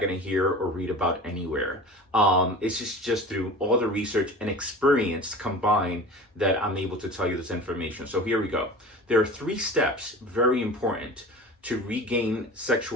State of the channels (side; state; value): both; normal; correlation 0.36